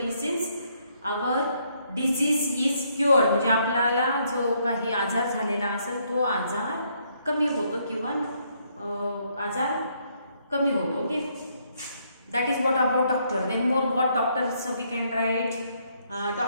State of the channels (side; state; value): both; inverted; correlation -0.71